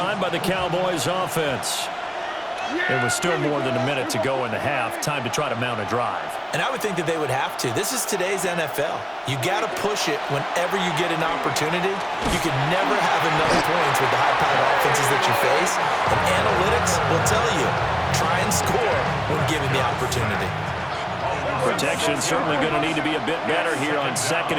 by the Cowboys offense. It was still more than a minute to go in the half. Time to try to mount a drive. And I would think that they would have to. This is today's NFL. You got to push it whenever you get an opportunity. You can never have enough points with the high-powered offenses that you face. And analytics will tell you, try and score when given the opportunity. Protection certainly going to need to be a bit better here on 2nd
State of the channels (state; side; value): identical; both; correlation 1.00